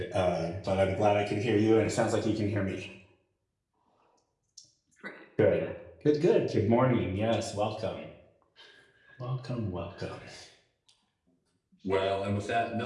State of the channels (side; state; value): both; identical; correlation 1.00